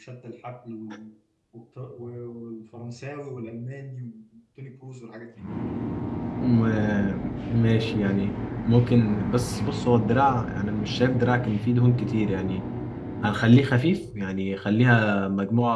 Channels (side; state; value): both; identical; correlation 1.00